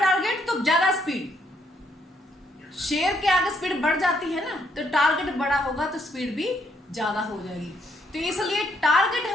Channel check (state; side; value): normal; both; correlation 0.72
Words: तो ज्यादा स्पीड। शेर के आगे स्पीड बढ़ जाती है ना, तो टारगेट बड़ा होगा तो स्पीड भी ज्यादा हो जाएगी। तो इसलिए टारगेट